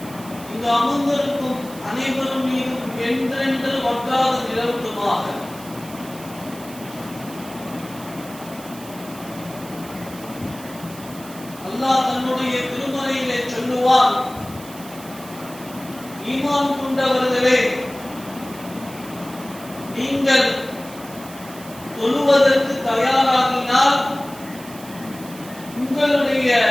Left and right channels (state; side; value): noise; right; hiss, 17 dB below the sound